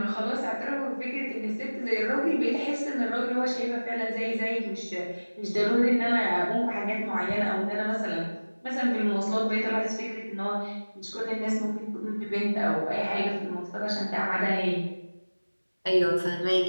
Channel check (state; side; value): inverted; both; correlation -1.00